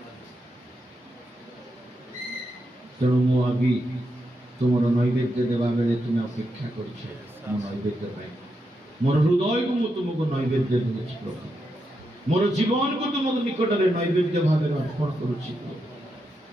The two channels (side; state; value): both; normal; correlation 0.84